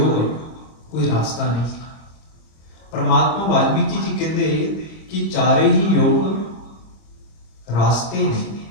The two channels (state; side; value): late; right; 25 ms